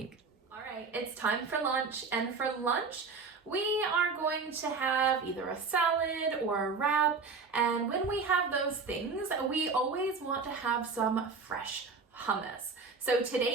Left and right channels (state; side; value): quieter; left; 4.7 dB